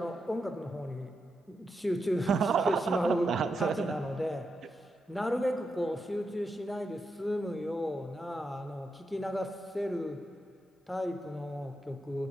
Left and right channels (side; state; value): both; normal; correlation 0.85